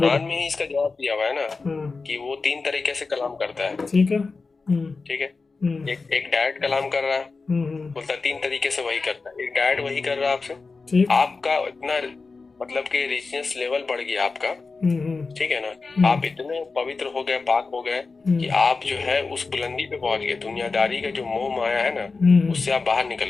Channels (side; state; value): right; quieter; 4.2 dB